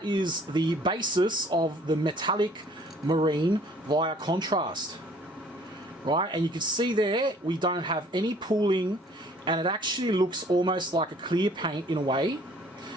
is the basis of the Metalic Marine via contrast. Right, and you can see there we don't have any pooling, and it actually looks almost like a clear paint in a way.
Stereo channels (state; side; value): normal; both; correlation 0.56